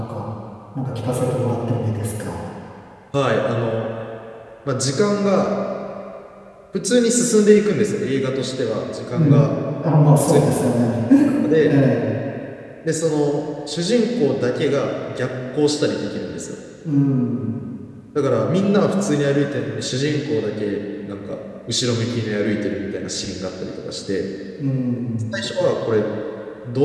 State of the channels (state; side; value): identical; both; correlation 1.00